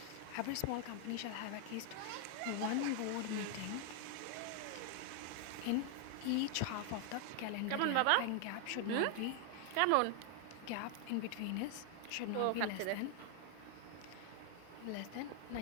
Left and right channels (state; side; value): different; both; correlation 0.00